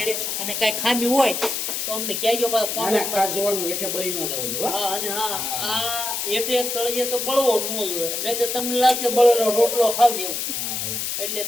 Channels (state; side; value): noise; left; hiss, 2 dB below the sound